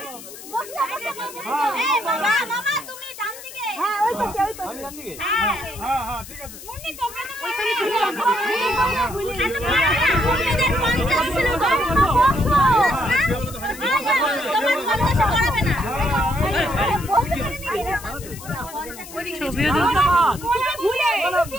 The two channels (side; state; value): left; noise; hiss, 15 dB below the sound